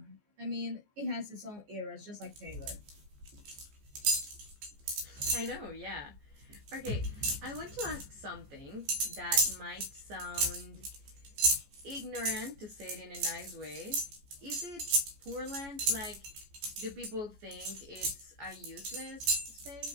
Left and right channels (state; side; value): late; left; 14 ms